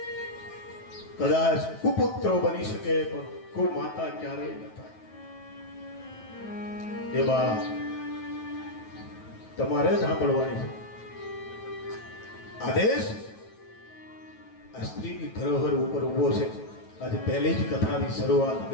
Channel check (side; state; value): right; late; 9.2 ms